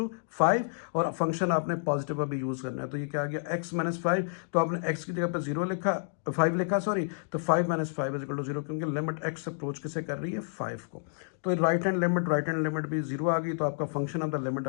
5, और फंक्शन आपने पॉजिटिव अभी यूज करना है। तो ये क्या आ गया, एक्स -5, तो आपने एक्स की जगह पर 0 लिखा, 5 लिखा सॉरी, तो 5 - 5 इज इक्वल टू 0, क्योंकि लिमिट एक्स अप्रोच किसे कर रही है, 5 को। तो राइट हैंड लिमिट भी 0 आ गई, तो आपका फंक्शन ऑफ द लिमिट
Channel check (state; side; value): silent; right; digital silence